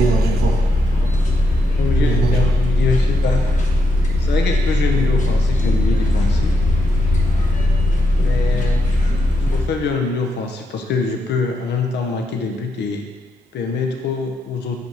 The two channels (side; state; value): both; normal; correlation 0.81